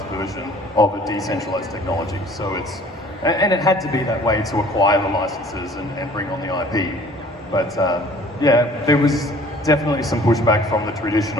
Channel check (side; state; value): both; normal; correlation 0.51